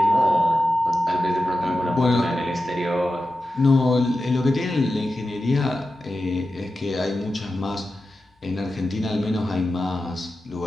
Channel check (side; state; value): both; normal; correlation 0.92